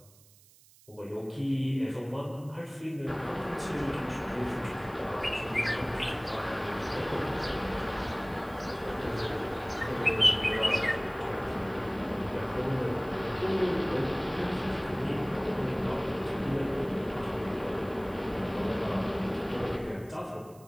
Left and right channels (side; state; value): right; noise; hiss, 26 dB below the sound